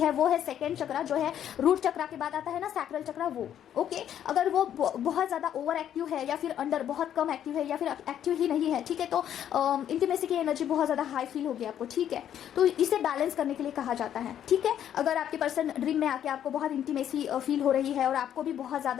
वो है सेकेंड चक्रा, जो है रूट चक्रा के बाद आता है ना सैक्रल चक्रा, वो, ओके। अगर वो बहुत ज़्यादा ओवर एक्टिव है या फिर अंडर बहुत कम एक्टिव है या फिर एक्टिव ही नहीं है, ठीक है, तो इंटीमेसी की एनर्जी बहुत ज़्यादा हाई फील होगी आपको, ठीक है। तो इसे बैलेंस करने के लिए कहा जाता है, ठीक है। अगर आपके पर्सन ड्रीम में आके आपको बहुत इंटीमेसी फील हो रही है और आपको भी बहुत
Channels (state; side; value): quieter; right; 10.2 dB